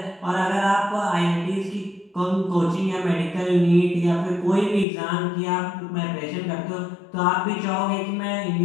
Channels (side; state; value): right; drops out; at 4.9 s